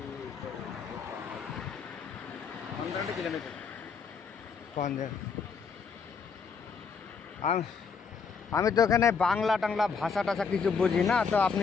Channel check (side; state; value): right; quieter; 5.6 dB